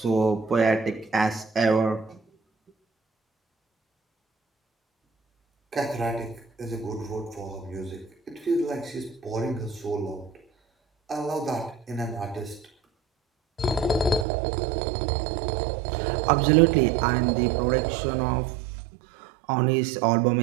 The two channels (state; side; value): drops out; left; at 14.2 s